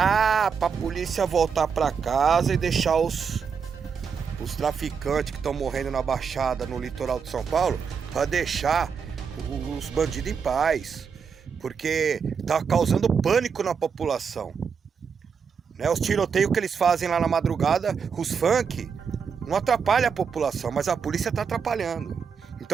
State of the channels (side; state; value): left; quieter; 6.3 dB